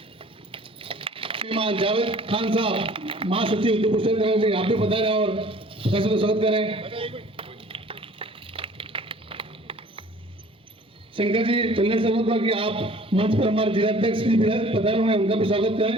श्रीमान जावेद खान साहब महासचिव उदयपुर शहर से आप भी पधारे और प्रत्याशी का स्वागत करें। शंकर जी चलने से होगा कि आप मंच पर हमारे जिलाध्यक्ष भी पधारे हुए हैं, उनका भी स्वागत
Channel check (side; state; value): both; normal; correlation 0.50